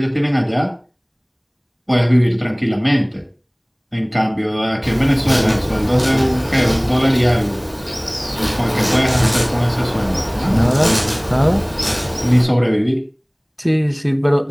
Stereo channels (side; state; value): both; identical; correlation 1.00